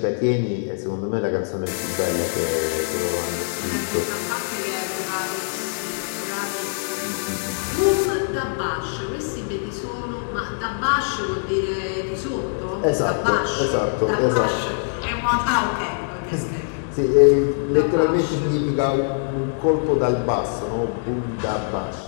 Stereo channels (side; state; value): right; silent; digital silence